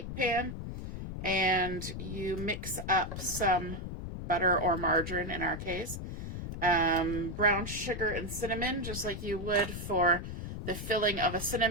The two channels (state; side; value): noise; left; rumble, 7 dB below the sound